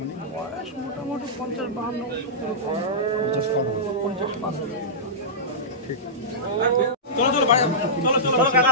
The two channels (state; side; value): normal; both; correlation -0.15